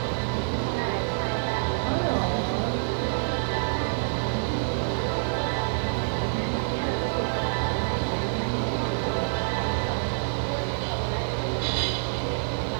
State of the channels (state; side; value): silent; left; digital silence